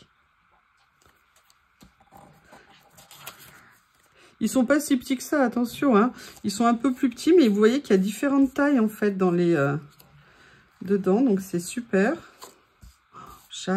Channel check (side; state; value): both; identical; correlation 1.00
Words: Ils sont pas si petits que ça, attention, hein. Ils sont un peu plus petits, mais vous voyez qu'il y a différentes tailles, en fait, dans les... dedans, donc c'est super.